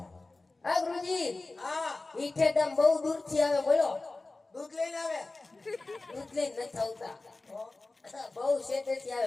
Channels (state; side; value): quieter; right; 3.3 dB